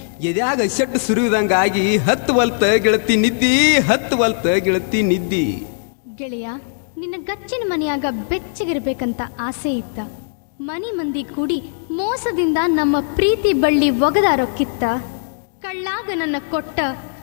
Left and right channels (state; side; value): silent; right; digital silence